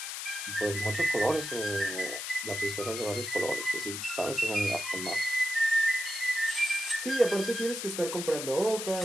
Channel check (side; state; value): left; noise; hiss, 6 dB below the sound